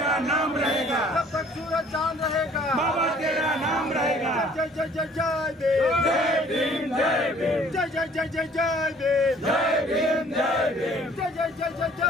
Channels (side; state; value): both; normal; correlation 0.56